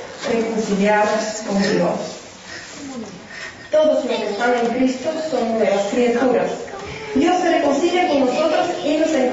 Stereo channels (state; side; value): identical; both; correlation 1.00